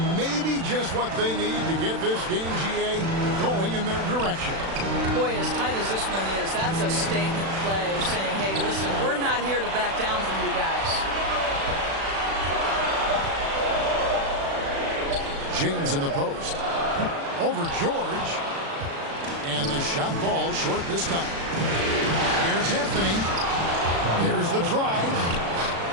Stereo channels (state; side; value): late; left; 36 ms